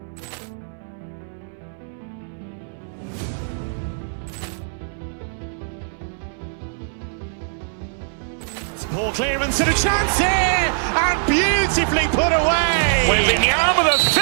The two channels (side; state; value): left; silent; 62 dB below the other